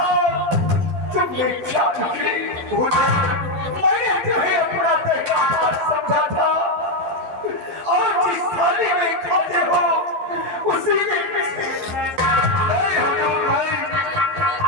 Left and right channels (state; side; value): late; left; 11 ms